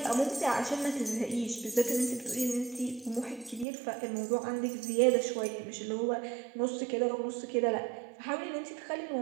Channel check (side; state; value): left; drops out; at 3.7 s